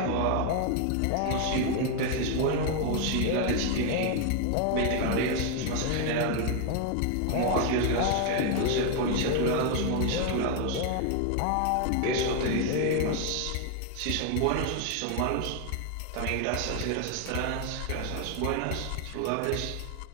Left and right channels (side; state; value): both; different; correlation 0.01